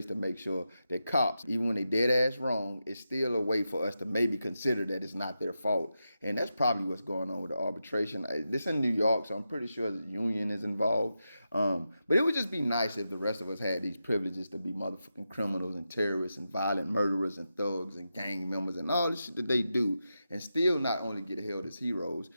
to make sure that cops, even when they dead ass wrong, it's still a way for us to maybe consider that it's not their fault. And that's probably what's going on with the arbitration. This in New York, so I'm pretty sure the union is involved. But it would just be nice if the rest of us had these privileges to be motherfucking criminals and terrorists and violent murderers and thugs and gang members and all this shit that they do and still not only get held as heroes,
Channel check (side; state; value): both; inverted; correlation -0.89